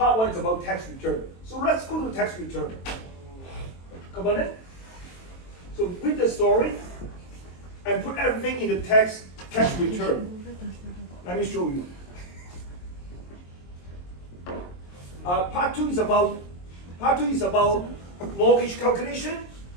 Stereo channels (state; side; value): late; right; 23 ms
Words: 1 is about tax return. So let's go to tax return. Come on in. So read the story and put everything in the tax return. Let me show you. Part 2 is about mortgage calculation.